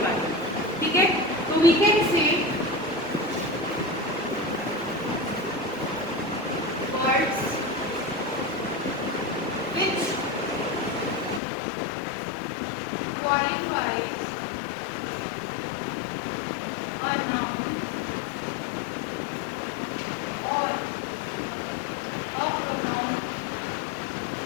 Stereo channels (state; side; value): drops out; right; at 11.4 s